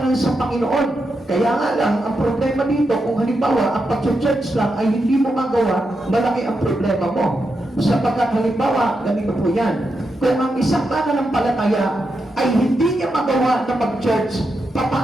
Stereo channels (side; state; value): both; normal; correlation 0.86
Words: sa Panginoon. Kaya nga lang, ang problema dito, kung halimbawa, ang pag-church lang ay hindi mo magawa, malaki ang problema mo. Sapagkat halimbawa, ganito po yan. Kung ang isang mananampalataya ay hindi niya magawa na mag-church,